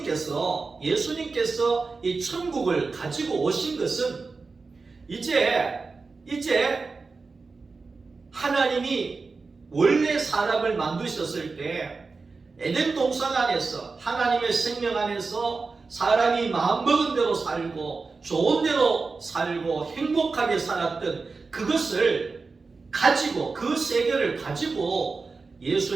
이 천국을 가지고 오신 것은 이제 하나님이 원래 사람을 만드셨을 때 에덴 동산 안에서 하나님의 생명 안에서 사람이 마음먹은 대로 살고 좋은 대로 살고 행복하게 살았던 그것을 가지고, 그 세계를 가지고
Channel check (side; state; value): left; quieter; 4.2 dB